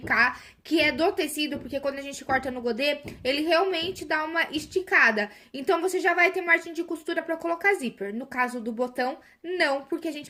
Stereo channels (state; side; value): identical; both; correlation 1.00